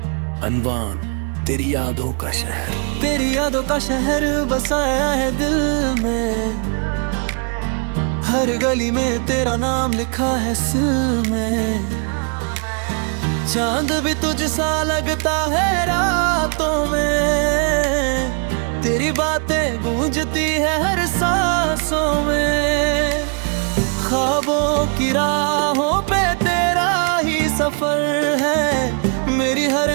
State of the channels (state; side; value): quieter; left; 39.9 dB